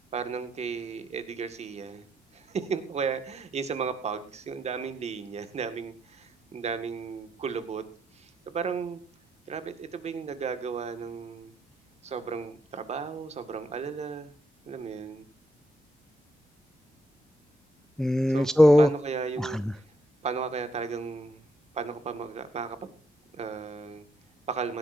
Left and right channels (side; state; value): both; normal; correlation 0.77